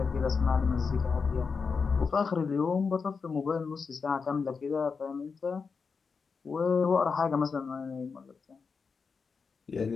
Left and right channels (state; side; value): quieter; right; 5.2 dB